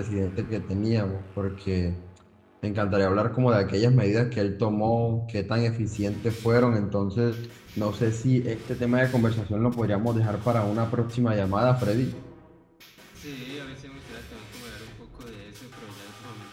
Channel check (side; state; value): both; identical; correlation 1.00